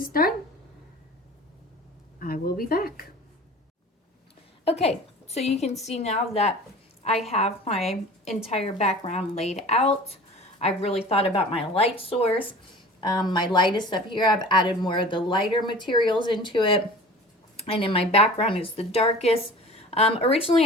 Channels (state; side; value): normal; both; correlation 0.41